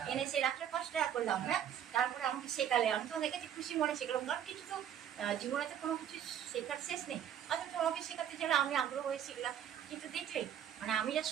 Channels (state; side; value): quieter; left; 9.8 dB